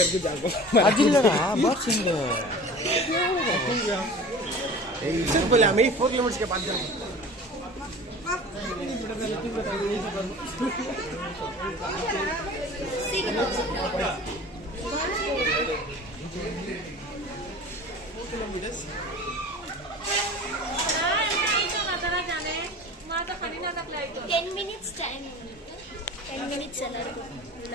அது இல்லடா பாக்ஸ் எங்க ஏய் சரி போல मैं 4 किलोमीटर के बाद जा Ten minutes time. 10 minutes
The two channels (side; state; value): both; normal; correlation 0.40